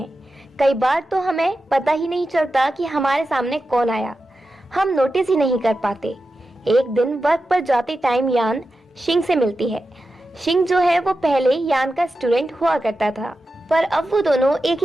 कई बार तो हमें पता ही नहीं चलता कि हमारे सामने कौन आया, हम नोटिस ही नहीं कर पाते। एक दिन वर्क पर जाते टाइम यान शिंग से मिलती है। शिंग जो है वो पहले यान का स्टूडेंट हुआ करता था, पर अब वो दोनों एक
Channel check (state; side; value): normal; both; correlation 0.91